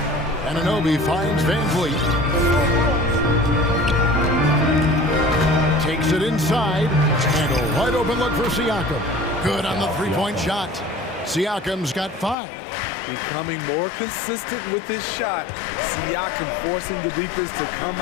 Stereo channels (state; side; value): drops out; right; at 12.4 s